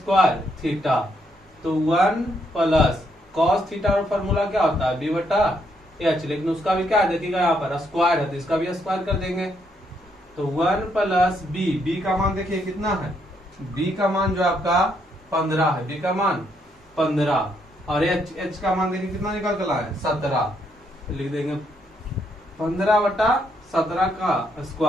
थीटा। तो 1 प्लस cos थीटा का फॉर्मूला क्या होता है b बटा h, लेकिन उसका भी क्या है देखिएगा यहाँ पर स्क्वायर है तो इसका भी स्क्वायर कर देंगे। तो 1 प्लस बी का मान देखिए कितना है, बी का मान जो आपका 15 है, बी का मान 15 और एच का मान देखिए कितना निकल कर है 17। तो लिख देंगे 15/17 का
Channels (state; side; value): normal; both; correlation 0.75